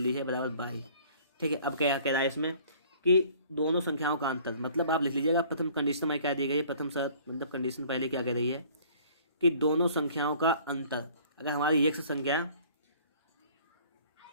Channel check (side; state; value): both; inverted; correlation -0.53